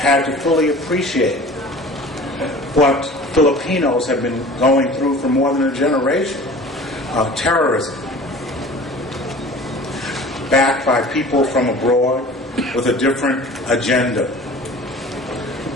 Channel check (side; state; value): both; normal; correlation 0.42